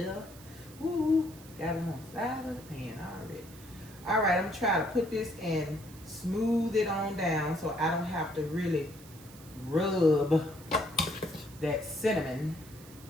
Woo. Got it on the side of the pan already. All right, I'm gonna try to put this and smooth it on down so I don't have to really rub that cinnamon.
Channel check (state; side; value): noise; right; hiss, 20 dB below the sound